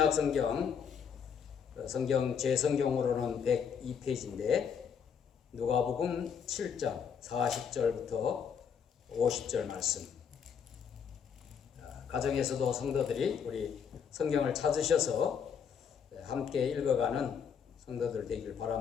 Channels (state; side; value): quieter; right; 7.2 dB